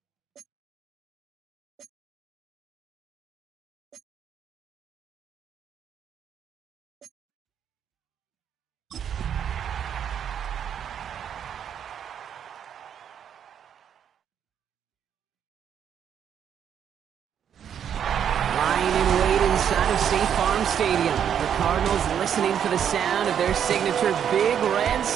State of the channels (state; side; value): quieter; left; 8.7 dB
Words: State Farm Stadium. The Cardinals listening for the sound of their signature big red